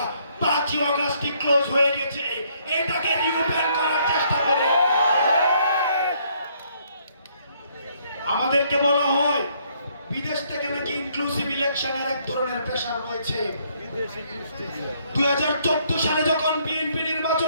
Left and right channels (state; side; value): inverted; both; correlation -0.68